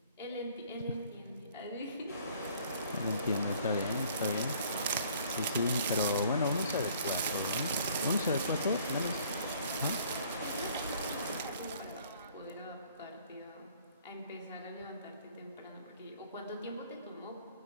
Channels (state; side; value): inverted; both; correlation -0.57